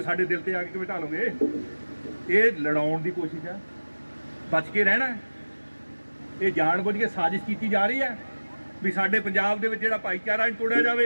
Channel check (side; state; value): both; inverted; correlation -1.00